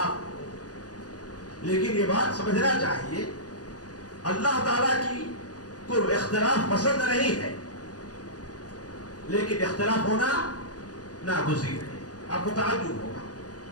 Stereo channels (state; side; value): late; right; 0.68 ms